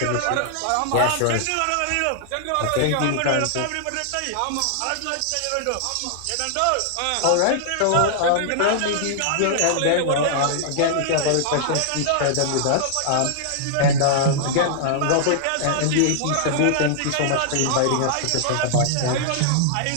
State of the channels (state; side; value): different; both; correlation -0.01